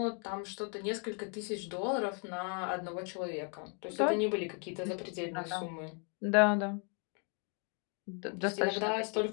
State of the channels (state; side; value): quieter; right; 39.3 dB